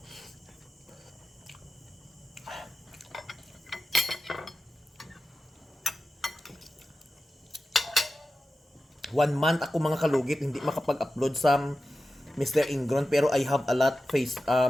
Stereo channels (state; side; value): normal; both; correlation 0.93